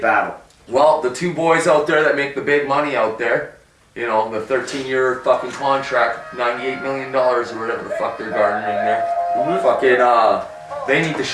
battle. Well, the two boys out there that make the big money out there, you know, the 13-year fucking contract, $98 million or whatever the fuck they're garnering there. Fucking, they need to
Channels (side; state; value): both; identical; correlation 1.00